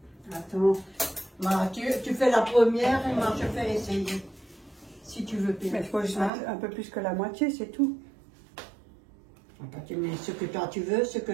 Attends. Voilà, tu fais la première et moi je fais essayer. Si tu veux bien. Mais il faut juste mettre un peu plus que la moitié, c'est tout. Tu mets ce que toi tu veux, ce que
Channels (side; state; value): left; drops out; at 6.3 s